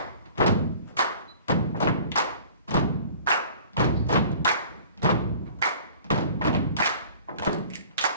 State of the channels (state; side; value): inverted; both; correlation -0.48